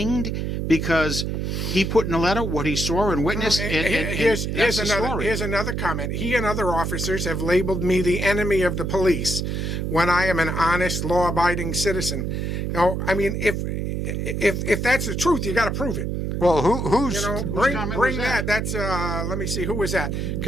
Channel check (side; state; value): right; noise; hum, 2 dB below the sound